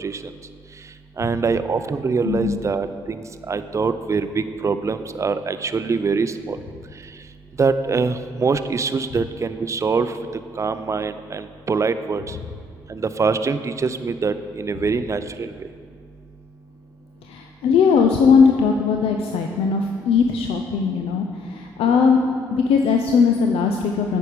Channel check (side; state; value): both; normal; correlation 0.65